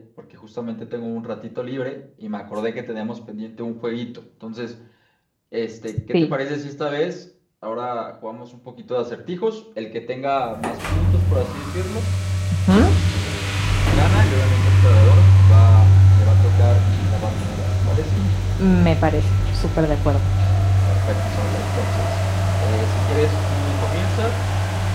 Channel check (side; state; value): both; identical; correlation 1.00